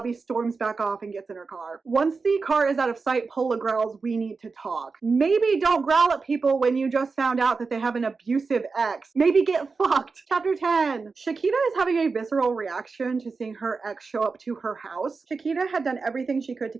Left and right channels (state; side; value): quieter; left; 4.5 dB